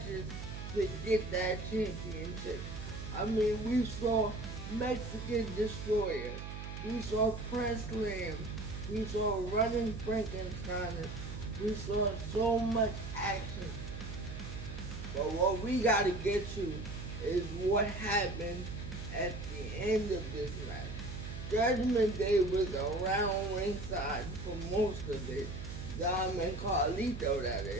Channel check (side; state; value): right; noise; hum, 8 dB below the sound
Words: to get that championship. I mean, we saw Mexican Destroyer, we saw Press Slam, we saw Running Frankenstein, we saw so much action. But what we gotta get to is what happened at the end of this match. Judgment Day was around ringside for most of it. Dom and Carlito, that